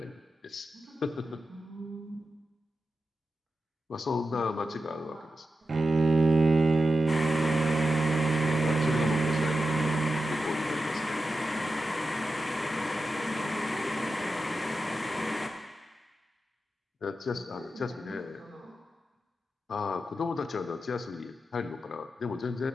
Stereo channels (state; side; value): normal; both; correlation 0.90